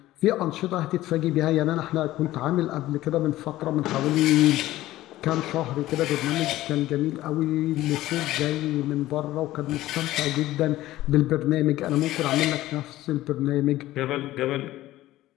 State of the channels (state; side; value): quieter; right; 15.7 dB